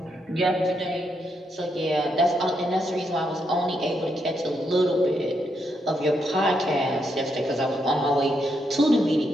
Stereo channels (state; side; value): normal; both; correlation 0.80